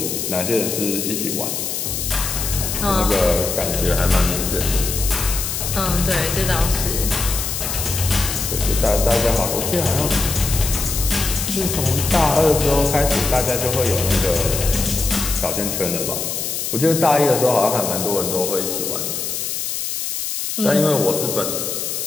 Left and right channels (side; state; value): left; noise; hiss, 3 dB below the sound